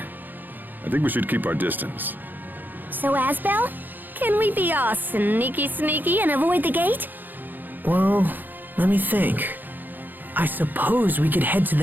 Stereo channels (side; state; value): left; late; 0.088 ms